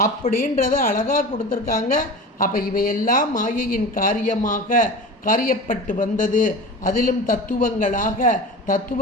அப்படின்றத அழகாக கொடுத்துருக்காங்க. அப்போ இவையெல்லாம் மாயையின் காரியப்பட்டு வந்தது. அதிலும் தத்துவங்களாக,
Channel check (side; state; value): both; normal; correlation 0.33